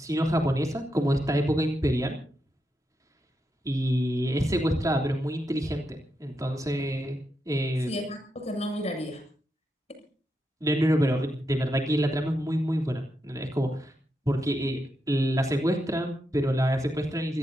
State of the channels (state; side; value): normal; both; correlation 0.84